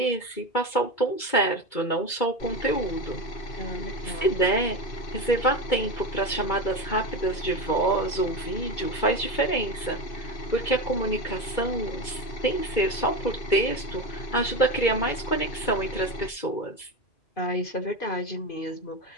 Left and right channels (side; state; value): right; late; 2.2 ms